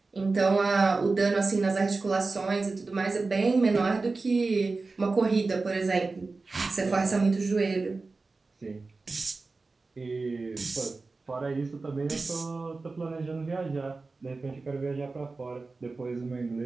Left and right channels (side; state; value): left; quieter; 3.8 dB